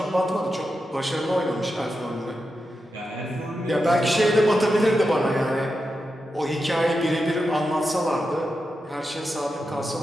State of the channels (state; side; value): normal; both; correlation 0.88